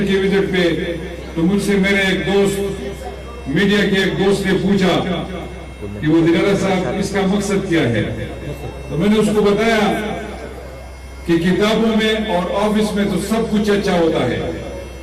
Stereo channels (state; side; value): identical; both; correlation 1.00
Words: کی وزٹ پہ، تو مجھ سے میرے ایک دوست، میڈیا کے ایک دوست نے پوچھا کہ وزیر اعلیٰ صاحب اس کا مقصد کیا ہے؟ تو میں نے اس کو بتایا کہ کتابوں میں اور آفس میں تو سب کچھ اچھا ہوتا ہے،